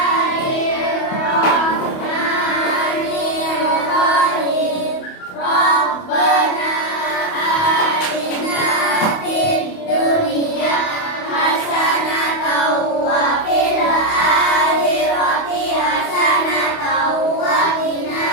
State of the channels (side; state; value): right; late; 28 ms